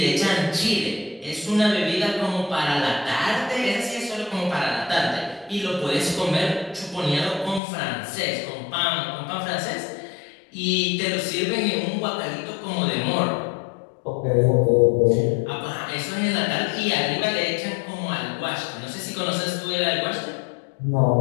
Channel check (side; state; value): right; drops out; at 7.6 s